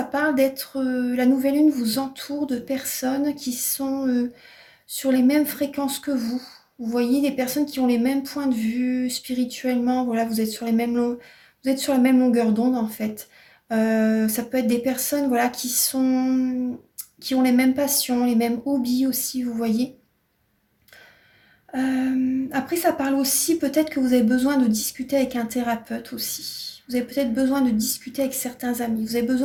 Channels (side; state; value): both; identical; correlation 1.00